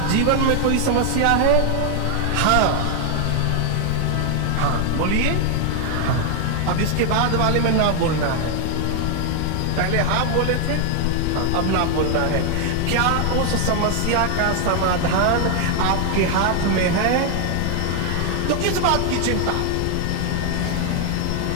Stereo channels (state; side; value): different; both; correlation 0.00